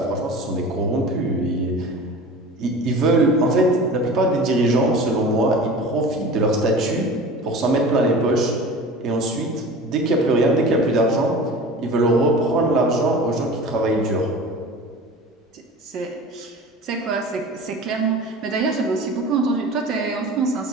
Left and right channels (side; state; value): both; normal; correlation 0.37